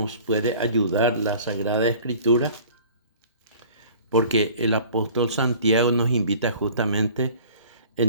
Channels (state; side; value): inverted; both; correlation -0.47